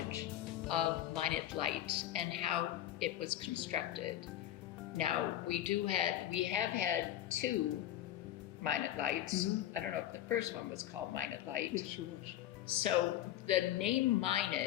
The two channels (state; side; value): quieter; right; 12.6 dB